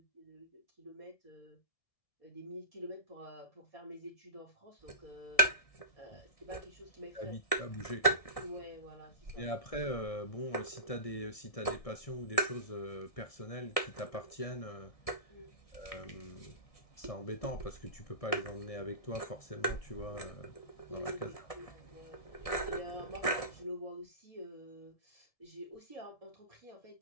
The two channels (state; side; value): late; right; 1.6 ms